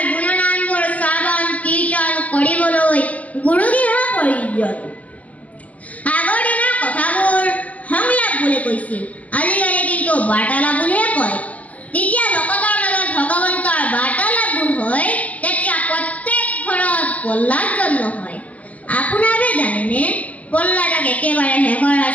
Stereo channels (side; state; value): right; late; 0.073 ms